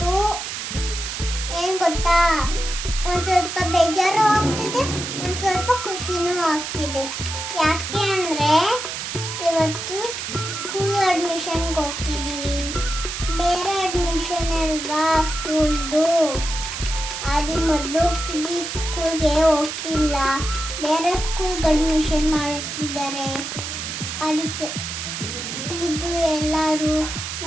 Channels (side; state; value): right; noise; hiss, 6 dB below the sound